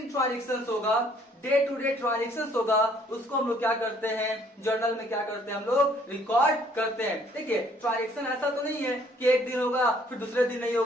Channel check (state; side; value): normal; both; correlation 0.61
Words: ट्रांजेक्शन होगा, डे टू डे ट्रांजेक्शन होगा, उसको हम लोग क्या करते हैं, जर्नल में क्या करते हैं, हम लोग रिकॉर्ड करते हैं। देखिए ट्रांजेक्शन ऐसा तो नहीं है कि एक दिन होगा फिर दूसरे दिन नहीं